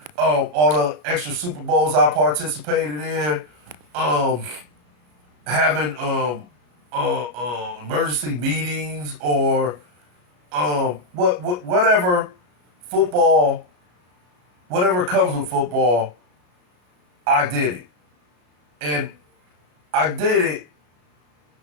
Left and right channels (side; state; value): left; late; 33 ms